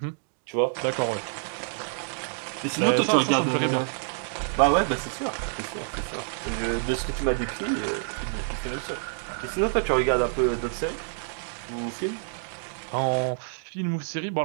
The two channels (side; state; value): left; silent; digital silence